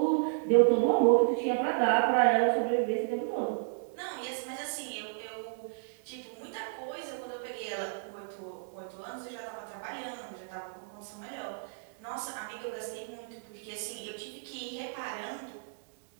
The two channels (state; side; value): silent; left; digital silence